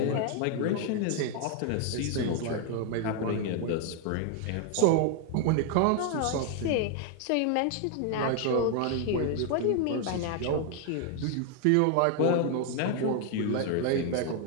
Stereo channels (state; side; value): different; both; correlation 0.00